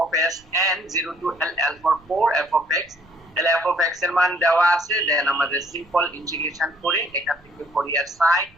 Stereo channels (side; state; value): right; noise; rumble, 29 dB below the sound